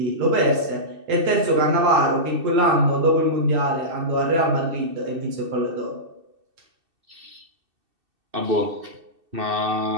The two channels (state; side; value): late; left; 2.6 ms